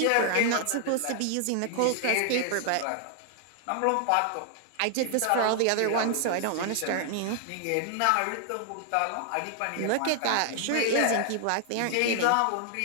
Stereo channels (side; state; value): both; different; correlation 0.00